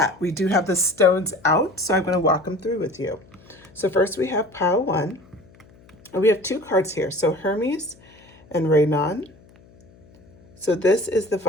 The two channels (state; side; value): noise; left; hum, 26 dB below the sound